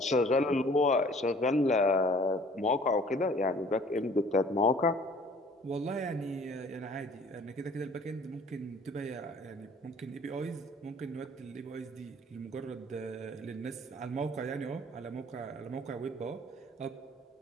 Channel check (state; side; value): normal; both; correlation 0.53